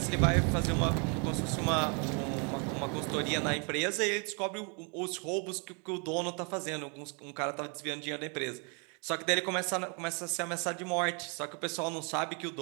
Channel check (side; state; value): left; quieter; 36.2 dB